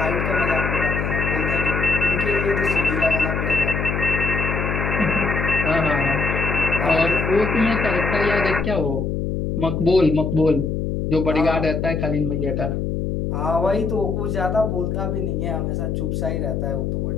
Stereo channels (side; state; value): left; noise; hum, 1 dB below the sound